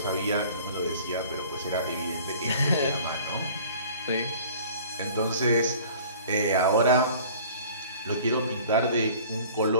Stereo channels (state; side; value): inverted; both; correlation -0.47